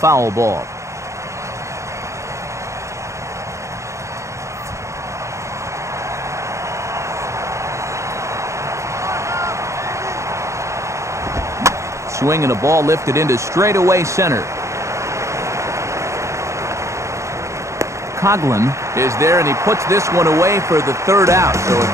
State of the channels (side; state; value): left; late; 0.14 ms